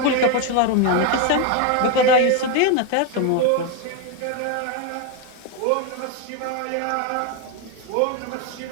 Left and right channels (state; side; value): different; both; correlation 0.02